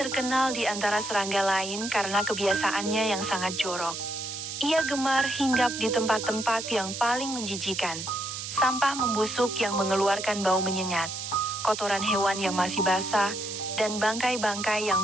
di antara serangga lain karena kebiasaannya yang sangat jorok. Ia gemar hinggap di tempat-tempat yang paling menjijikan. Sampah membusuk yang mengeluarkan bau menyengat, kotoran hewan yang masih basah, dan bangkai-bangkai yang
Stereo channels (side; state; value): right; noise; hiss, 7 dB below the sound